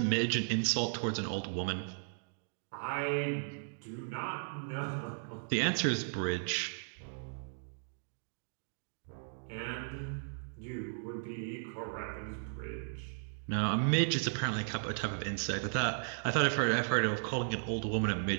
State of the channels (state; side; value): silent; left; digital silence